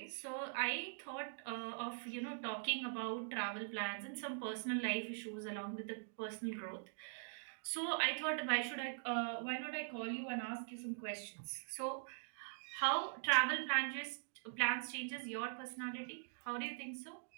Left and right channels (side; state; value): left; silent; digital silence